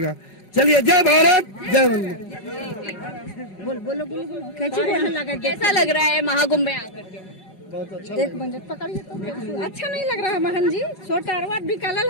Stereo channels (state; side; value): late; right; 5.4 ms